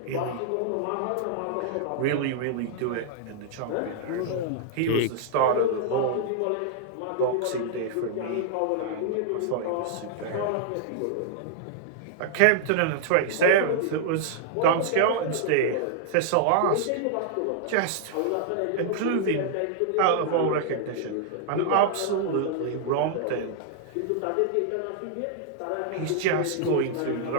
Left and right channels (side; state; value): both; different; correlation -0.01